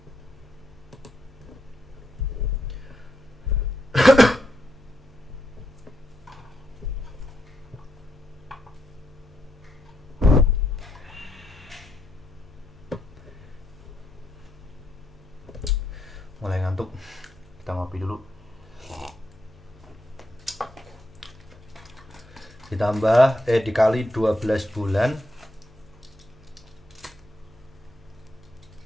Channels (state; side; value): normal; both; correlation 0.80